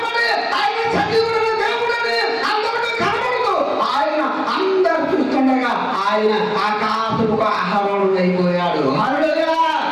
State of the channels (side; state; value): both; identical; correlation 1.00